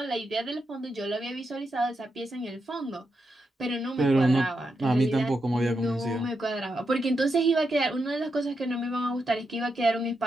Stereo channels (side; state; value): both; normal; correlation 0.85